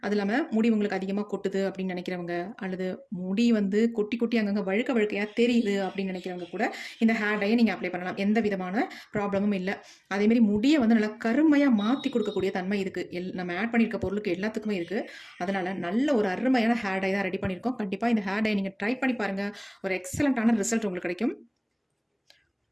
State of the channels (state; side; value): identical; both; correlation 1.00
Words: அது இல்லாமல் முடி உங்களுக்கு அதிகமாக கொட்டுது அப்படின்னு நினைக்கிறவங்க, அல்லது முடி வந்து கொட்டி கொட்டி அங்கங்கே வழுக்கையாக தெரியுது அப்படின்னு நினைக்கிறவங்க கூட இந்த ஹேர் டையை நீங்கள் அப்ளை பண்ணலாம். எந்த விதமான ப்ராப்ளமும் இல்லை. அதேமாரி முடியை வந்து நல்லா கருமையாக மாற்றி கொடுக்கக்கூடிய தன்மை இருக்குது. நம்ம ஆட் பண்ணியிருக்க பொருளுக்கு எல்லாத்துக்குமே இருக்குது. அதனால் நல்ல ஒரு அருமையான ஹேர் டை தான் ரெடி பண்ணியிருக்கோம். கண்டிப்பாக இந்த ஹேர் டை நீங்கள் ட்ரை பண்ணி பாருங்கள். ஒரு எக்ஸலண்ட்டான ரிசல்ட் உங்களுக்கு கிடைக்கும்.